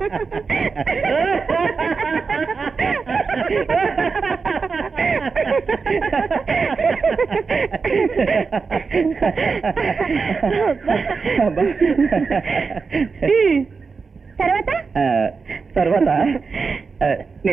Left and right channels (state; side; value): quieter; left; 4.9 dB